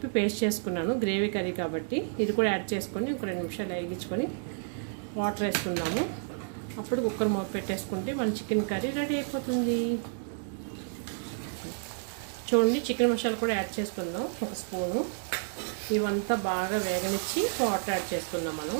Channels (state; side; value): silent; left; digital silence